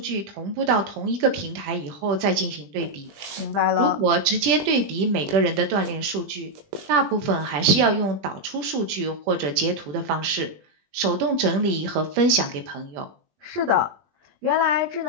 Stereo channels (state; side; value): late; left; 20 ms